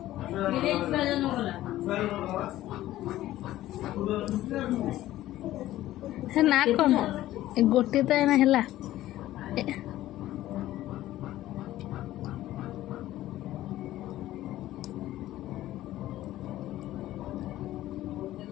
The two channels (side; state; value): right; quieter; 14.7 dB